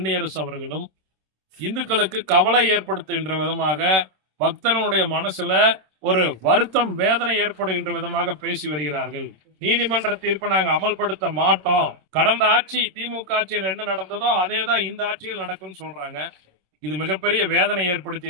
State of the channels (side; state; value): left; late; 26 ms